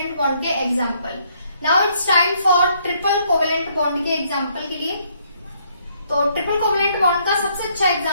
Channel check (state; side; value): inverted; both; correlation -0.69